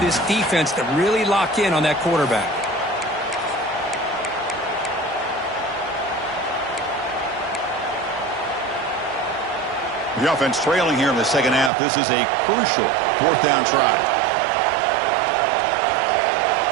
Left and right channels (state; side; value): drops out; left; at 11.7 s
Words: this defense to really lock in on that quarterback. The offense trailing here in the second half. This is a crucial fourth down try.